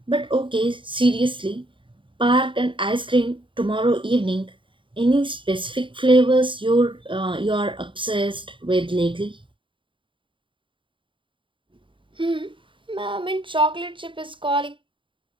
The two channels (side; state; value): left; late; 0.24 ms